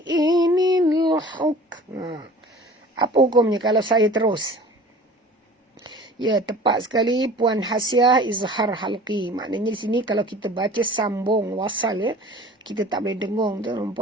inil huk. Apa hukumnya kalau saya terus? Ya, tepat sekali Puan Hasiah, izhar halqi. Maknanya di sini kalau kita baca sambung wasal, ya, kita tak boleh dengung tu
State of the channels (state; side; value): normal; both; correlation 0.44